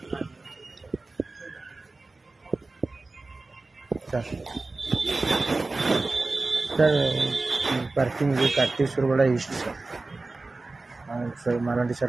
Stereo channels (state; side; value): quieter; left; 3.4 dB